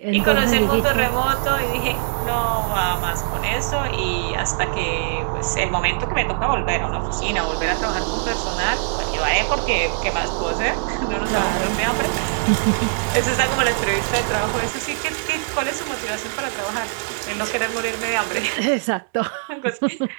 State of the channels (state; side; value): silent; left; 64 dB below the other